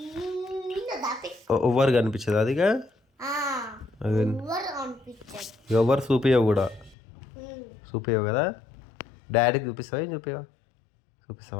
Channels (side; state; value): right; drops out; at 7.0 s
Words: ఎవరు కనిపించదు అదిగా? ఎవరు చూపించవు కూడా, చూపించవు కదా. డాడీకి చూపిస్తావా? ఏం